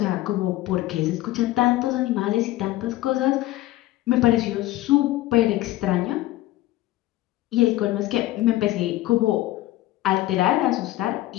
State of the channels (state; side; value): quieter; right; 16.2 dB